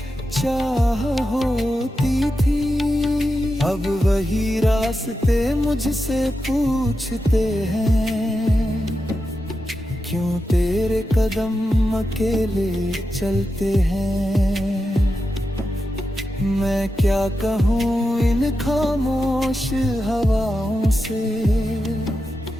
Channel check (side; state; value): both; normal; correlation 0.89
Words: चाह होती थी, अब वही रास्ते मुझसे पूछते हैं, क्यों तेरे कदम अकेले चलते हैं, मैं क्या कहूँ इन खामोश हवाओं से,